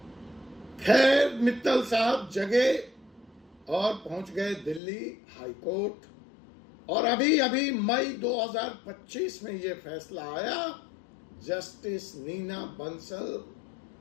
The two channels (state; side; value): drops out; right; at 4.8 s